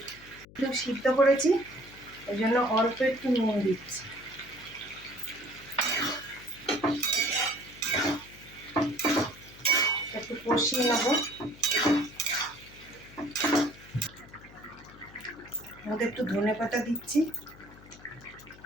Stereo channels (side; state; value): left; noise; hum, 21 dB below the sound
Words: একটু সিদ্ধ করেছি ওই জন্য অল্প একটু নুন দিচ্ছি। একটু কষিয়ে নেব। মধ্যে একটু ধনেপাতা দিচ্ছি,